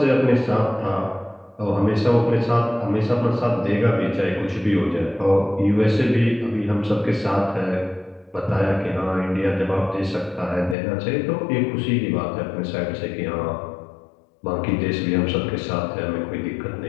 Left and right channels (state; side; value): drops out; right; at 10.8 s